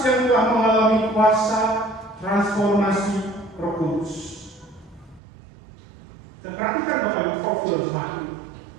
yang telah mengalami kuasa transformasi Roh Kudus. Dan perhatikan Bapak Ibu profil jemaat ini.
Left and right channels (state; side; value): drops out; left; at 5.2 s